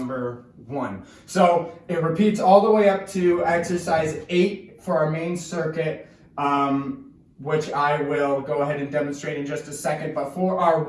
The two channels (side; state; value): both; identical; correlation 1.00